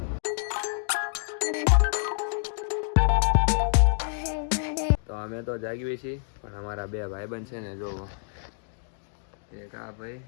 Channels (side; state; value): right; silent; digital silence